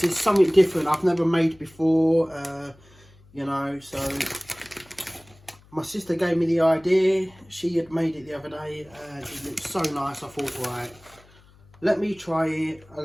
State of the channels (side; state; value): left; noise; hum, 27 dB below the sound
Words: is something different I've never made before, you know, so my sister gave me the idea. She had made it the other day and it looked so nice. I thought, right, let me try it